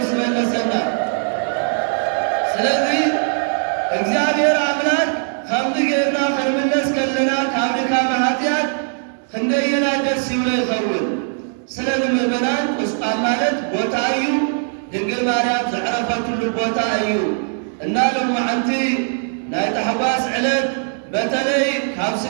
መለሰና ስለዚ እግዚአብሔር አምላክ ከምዚ ጌርና ክንምለስ ከለና ካብ ድካም ኃጢአት ክንደየና ደስ ይብሎ ይኸውን ስለዚ ምእመናን ቁስቋም ማለት ቦታ እዩ ድንግል ማርያም ዘዕረፈትሉ ቦታ እዩ እና ሎማዓንቲ ናይ ታሕጓስ ዕለት በተለይ ካብ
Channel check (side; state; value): left; silent; 63 dB below the other